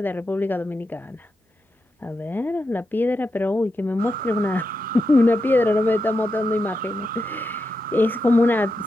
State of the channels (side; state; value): both; normal; correlation 0.87